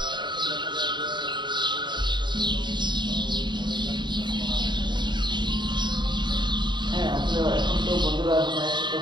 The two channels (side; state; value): left; late; 0.22 ms